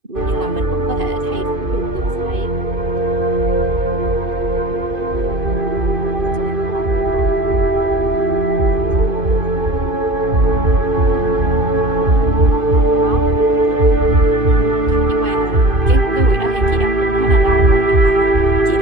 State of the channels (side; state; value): left; late; 2.5 ms